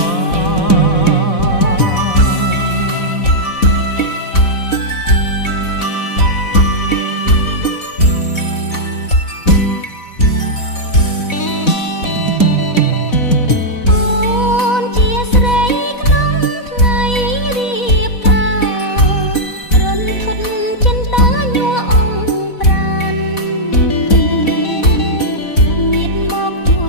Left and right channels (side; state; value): right; late; 4.1 ms